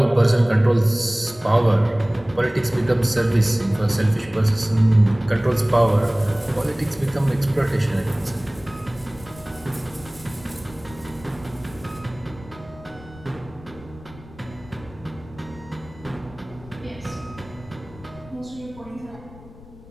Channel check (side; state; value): left; noise; rumble, 20 dB below the sound